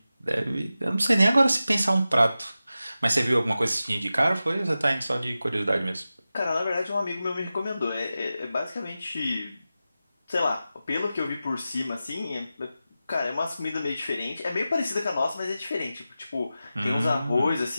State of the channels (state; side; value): inverted; both; correlation -0.93